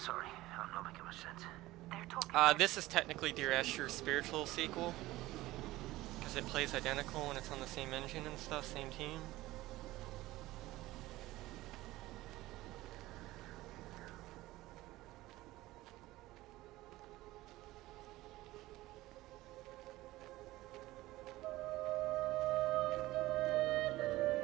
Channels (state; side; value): quieter; left; 17.7 dB